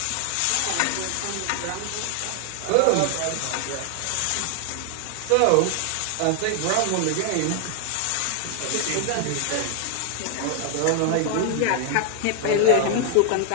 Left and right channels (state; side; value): different; both; correlation 0.00